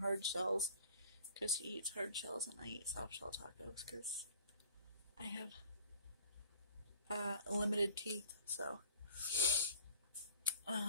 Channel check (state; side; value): inverted; both; correlation -0.48